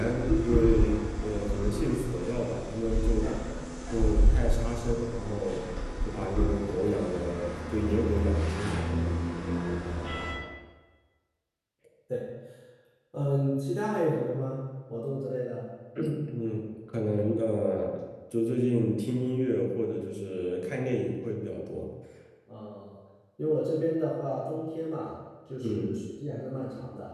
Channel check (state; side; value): identical; both; correlation 1.00